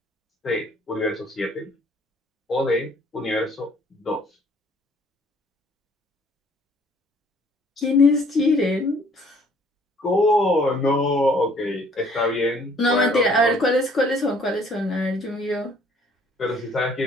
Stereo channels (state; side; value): normal; both; correlation 0.59